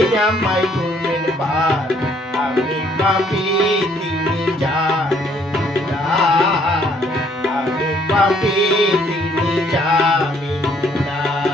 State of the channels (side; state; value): both; normal; correlation 0.65